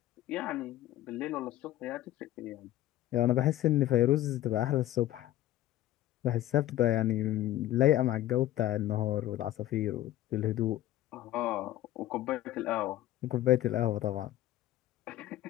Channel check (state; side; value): quieter; right; 14.1 dB